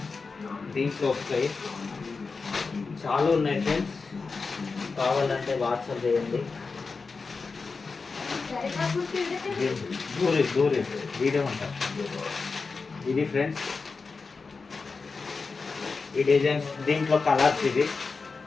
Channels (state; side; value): quieter; right; 4.5 dB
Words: దీంట్లో వస్తాయి. చాలా ఉన్నాయి ఫ్రెండ్స్, కావాలంటే వాట్సాప్ చేయండి. దూరి వీడియో ఉంటారు. ఇది ఫ్రెండ్స్, ఈ డిజైన్స్, దీంట్లో కలర్స్.